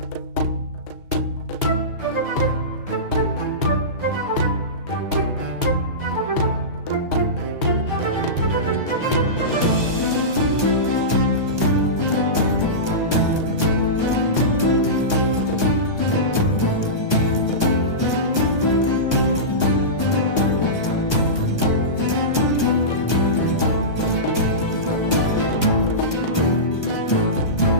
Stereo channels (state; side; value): late; right; 1.3 ms